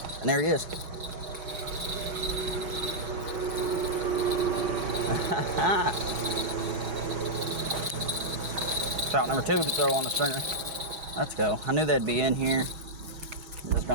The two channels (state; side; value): late; left; 6.2 ms